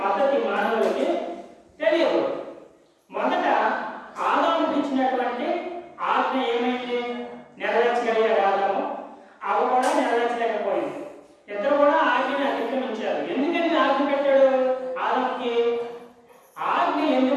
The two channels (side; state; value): both; identical; correlation 1.00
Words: పద్ధతి మానవులకి తెలియదు. మొదట ఆదాముకి ఇచ్చినటువంటి ఆజ్ఞ ఏమైంది, నెరవేర్చగలిగారు ఆదాము, అవి కూడా నెరవేర్చలేకపోయింది. ఇద్దరు కూడా ఆజ్ఞని అతిక్రమించారు. ఎందుకని ఆజ్ఞ పెట్టాడు ఆదాముకి? ఆజ్ఞ